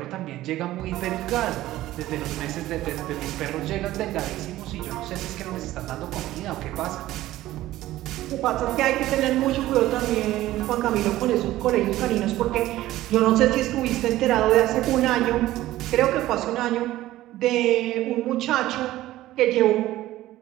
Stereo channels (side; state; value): left; quieter; 15.5 dB